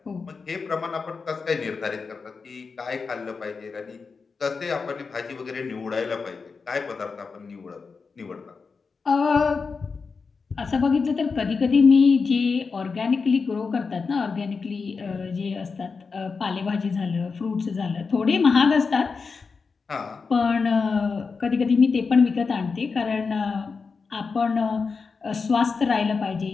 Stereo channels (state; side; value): quieter; right; 4.9 dB